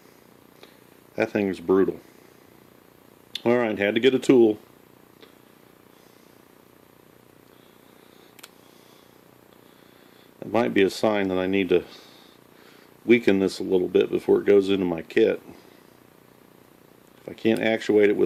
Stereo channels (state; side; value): identical; both; correlation 1.00